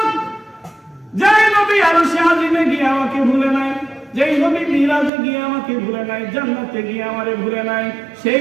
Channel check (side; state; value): left; drops out; at 5.1 s